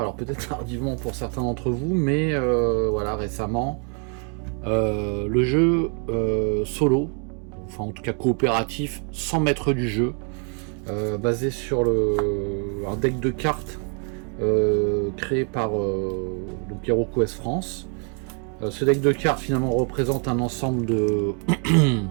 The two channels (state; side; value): quieter; left; 39.5 dB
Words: peut-être tardivement pour certains d'entre vous, mais voilà, récemment, le jeu solo, enfin en tout cas coopératif, sans maître du jeu, basé sur un deck de cartes créé par donc HeroQuest France. Ce deck de cartes finalement représente un ensemble de